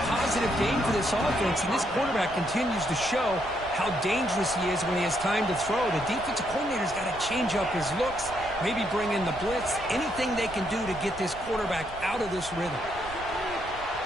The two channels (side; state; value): right; noise; rumble, 17 dB below the sound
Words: positive game for this offense, and this quarterback continues to show how dangerous he is when he has time to throw. The defensive coordinator's got to change up his looks, maybe bring in the blitz, anything they can do to get this quarterback out of this rhythm.